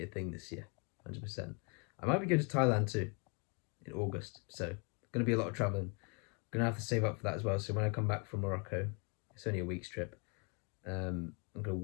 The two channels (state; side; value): quieter; right; 34.6 dB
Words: thing this year, 100%. I might be going to Thailand too in August, so going to be a lot of traveling. Gonna have to save up for that as well. So when I come back from Morocco, it's only a week's trip. I'm gonna